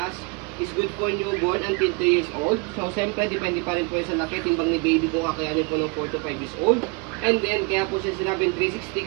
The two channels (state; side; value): quieter; left; 29.7 dB